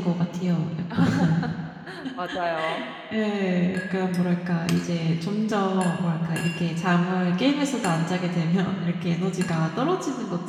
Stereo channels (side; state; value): both; identical; correlation 1.00